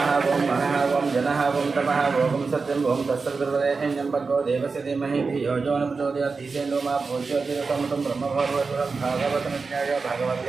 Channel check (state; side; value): quieter; left; 4.5 dB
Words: ओम मनः ओम जनः ओम तपः ओम सत्यं ओम तत्सवितुर्वरेण्यं भर्गो देवस्य धीमहि धियो यो न प्रचोदयात् ईशेनो मा भूज्योतिरसमतं ब्रह्मभर्गवतं भागवतमित्याय